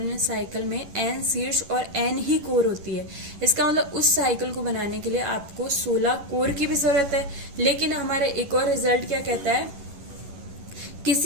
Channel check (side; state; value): left; late; 11 ms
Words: साइकिल में n शीर्ष और n ही कोर होती है। इसका मतलब उस साइकिल को बनाने के लिए आपको 16 कोर की भी जरूरत है। लेकिन हमारा एक और रिजल्ट क्या कहता है,